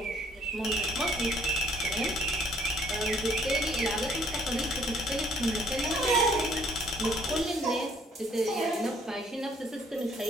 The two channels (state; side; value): normal; both; correlation 0.62